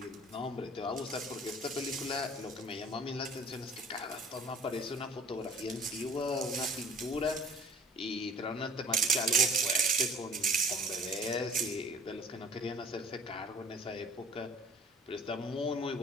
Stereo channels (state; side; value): normal; both; correlation 0.50